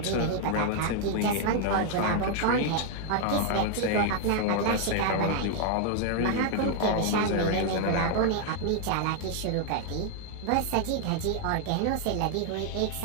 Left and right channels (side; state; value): both; different; correlation 0.00